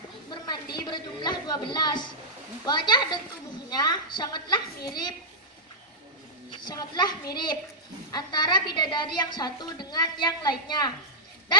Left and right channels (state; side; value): normal; both; correlation -0.10